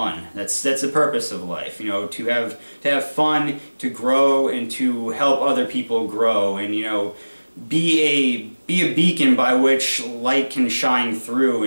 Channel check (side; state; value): both; inverted; correlation -1.00